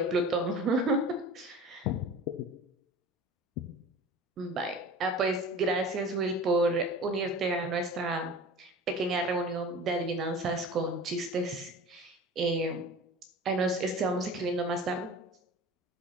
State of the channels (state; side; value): normal; both; correlation 0.38